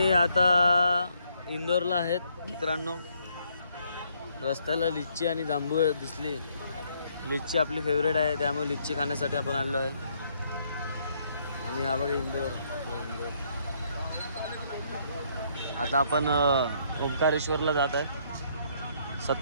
आता इंदोरला आहेत मित्रांनो. रस्त्याला लिच्ची आणि जांभूळ दिसली. लिच्ची आपली फेवरेट आहे, त्यामुळे लिच्ची खाण्यासाठी आपण आलो आहे. आणि हा बघा इंदोर. आता आपण ओंकारेश्वरला जात आहे.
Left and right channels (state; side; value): inverted; both; correlation -0.69